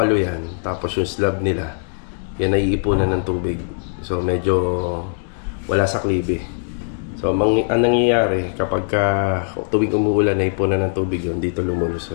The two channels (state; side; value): silent; right; 65 dB below the other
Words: yan. Tapos yung slab nila, yan ay iipunan ng tubig. So medyo wala sa klibe. So ang nangyayari kapag tuwing umuulan ay ipunan ng tubig yun, dito